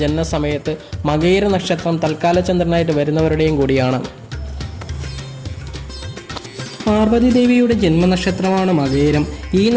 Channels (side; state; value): both; identical; correlation 1.00